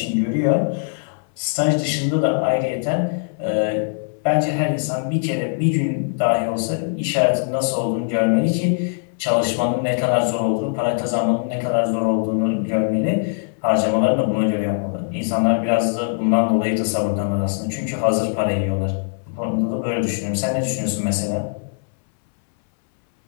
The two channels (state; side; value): silent; right; 62 dB below the other